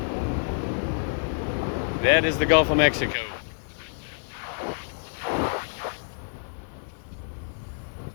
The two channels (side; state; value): right; silent; digital silence